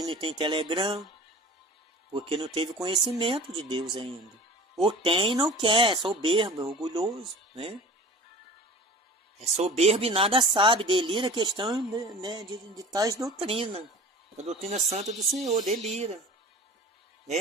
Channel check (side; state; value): both; normal; correlation 0.39